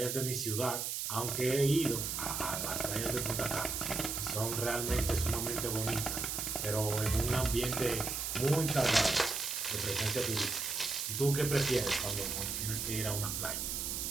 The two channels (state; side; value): noise; right; hiss, 2 dB below the sound